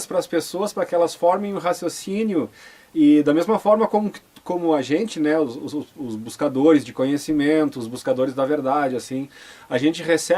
para as pessoas para que elas formem um raciocínio e da mesma forma como a gente, né, os buscadores de conhecimento, os buscadores da verdade, assim, a gente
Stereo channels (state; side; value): identical; both; correlation 1.00